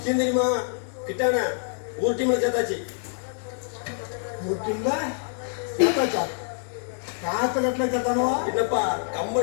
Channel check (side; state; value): right; silent; digital silence